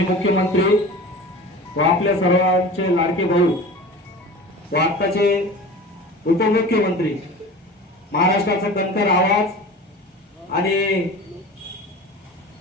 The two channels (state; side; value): normal; both; correlation 0.36